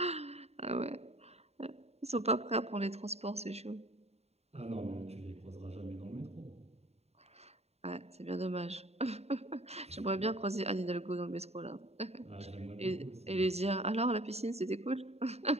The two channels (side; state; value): left; late; 0.30 ms